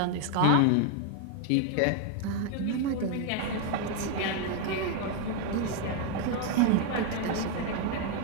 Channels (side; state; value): both; different; correlation 0.01